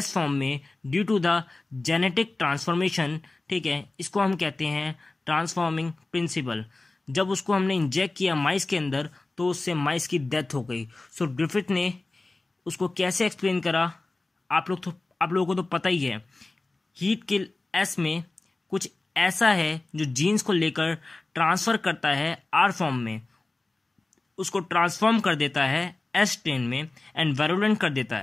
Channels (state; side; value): quieter; right; 3.2 dB